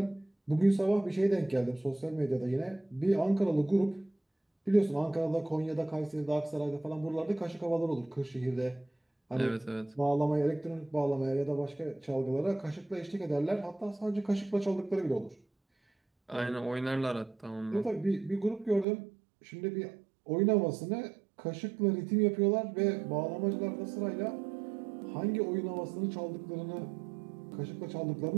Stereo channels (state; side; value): drops out; left; at 18.9 s